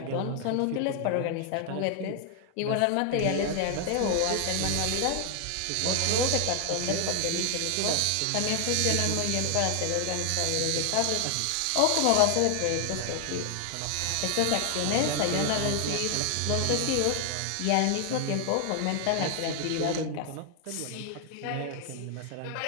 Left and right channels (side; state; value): both; different; correlation 0.00